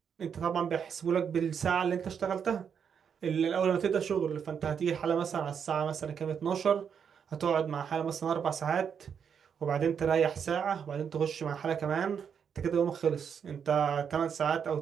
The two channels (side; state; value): left; quieter; 7.3 dB